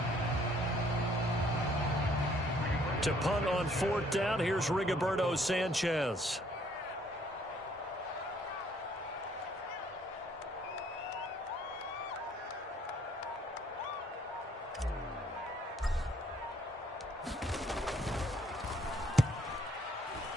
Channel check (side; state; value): both; normal; correlation 0.63